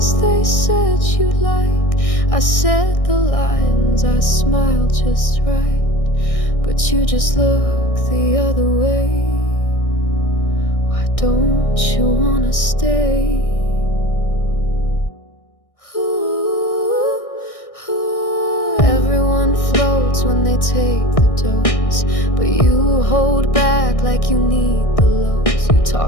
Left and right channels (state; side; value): late; right; 1.6 ms